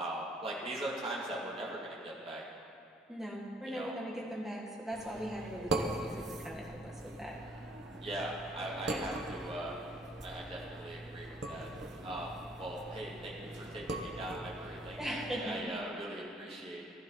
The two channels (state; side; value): normal; both; correlation 0.61